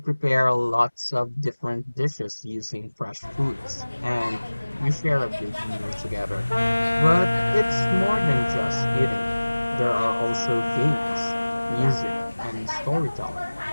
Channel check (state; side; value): inverted; both; correlation -1.00